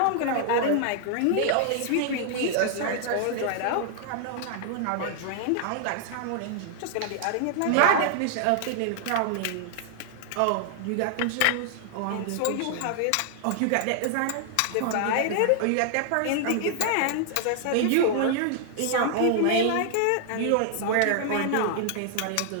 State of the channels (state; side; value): different; both; correlation 0.00